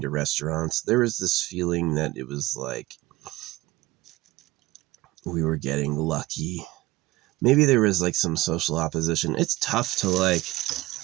to restaurants. There was this feeling that it was like we were getting lucky. Maybe there was like some social opposition. It's tough to like,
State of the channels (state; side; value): quieter; left; 18.9 dB